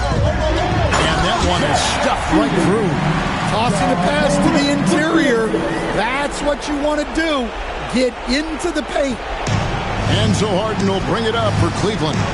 that one is stuffed right through. Tossing a pass to the interior. That's what you want to do. Get into the paint. And so Harden will bring it up for Cleveland.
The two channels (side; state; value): both; identical; correlation 1.00